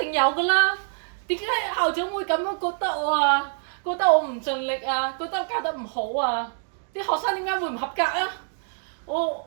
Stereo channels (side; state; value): left; silent; digital silence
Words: 定有㗎啦。點解校長會咁樣覺得我啊？覺得我唔盡力啊？覺得教得唔好啊？啲學生點解會唔合格啊？